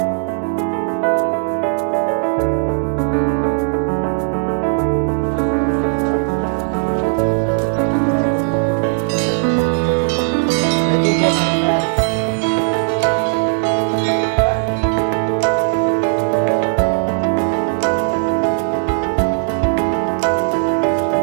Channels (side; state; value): left; silent; digital silence